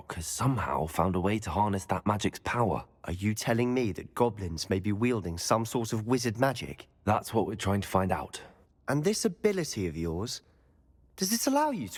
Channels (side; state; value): both; identical; correlation 1.00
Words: has somehow found a way to harness that magic's power. Are you telling me that goblins may be wielding some sort of wizard magic? That's what we're trying to find out. And this ability of yours, does it allow you